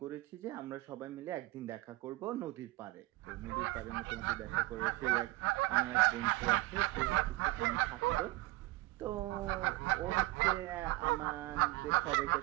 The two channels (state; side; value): quieter; left; 19.5 dB